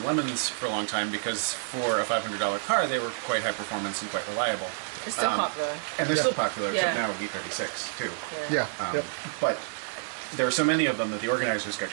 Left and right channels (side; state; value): left; silent; digital silence